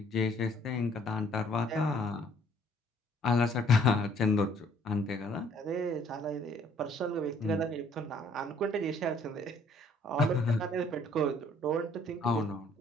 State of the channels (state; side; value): normal; both; correlation 0.61